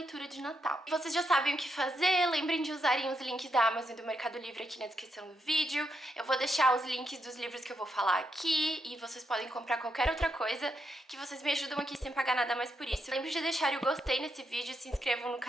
de Natal. Vocês já sabem o que fazer, lembrem de usarem os links da Amazon e do Mercado Livre aqui na descrição do vídeo. Eu vou deixar os links dos livros que eu vou falar aqui e vocês podem comprar qualquer outra coisa que vocês me ajudam aqui sem pagar nada mais por isso. Lembrem de deixar o gostei nesse vídeo, se inscrevam no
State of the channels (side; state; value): both; normal; correlation 0.81